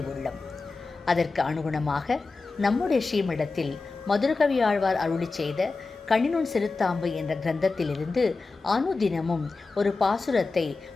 அதற்கு அனுகுணமாக நம்முடைய ஸ்ரீமடத்தில் மதுரகவி ஆழ்வார் அருளி செய்த கண்ணினுன் சிறுத்தாம்பு என்ற கிரந்தத்திலிருந்து அனுதினமும் ஒரு பாசுரத்தை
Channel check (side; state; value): right; quieter; 3.9 dB